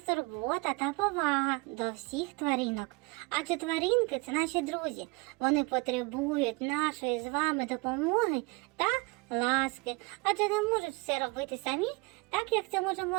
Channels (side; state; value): left; quieter; 26.8 dB